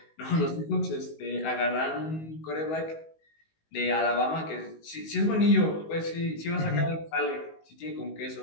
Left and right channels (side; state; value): right; late; 19 ms